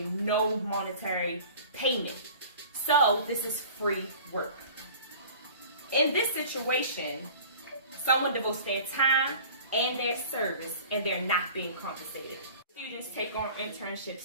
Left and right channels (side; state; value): both; inverted; correlation -0.43